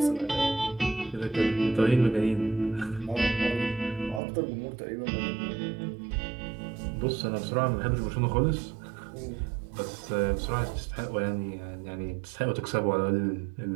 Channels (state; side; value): drops out; left; at 4.2 s